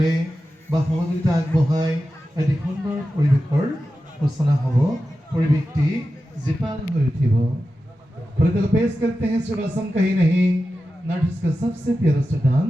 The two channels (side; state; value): both; normal; correlation 0.92